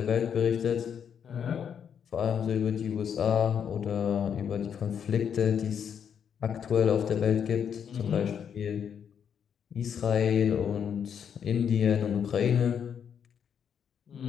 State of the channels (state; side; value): quieter; right; 7.9 dB